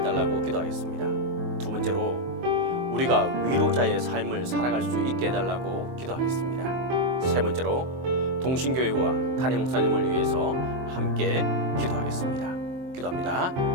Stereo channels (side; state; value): left; late; 23 ms